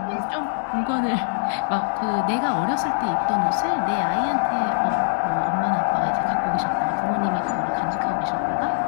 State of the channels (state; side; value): silent; right; 62 dB below the other